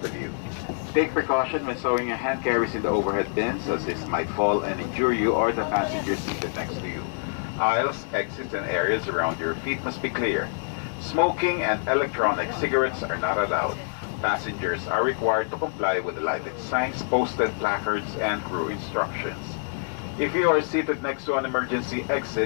of you. Take precaution when stowing your hand carries in the overhead bins, as this might fall and injure you or the passenger seated next to you. Aisles, exits, and areas around your feet must be clear. Smoking and electronic cigarettes are not allowed. Passengers are required to comply with the lighted signs, posted placards, and crew instructions. If you are seated next to an emergency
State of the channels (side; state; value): right; silent; digital silence